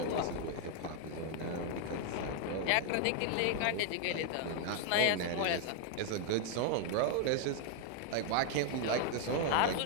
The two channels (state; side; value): different; both; correlation 0.00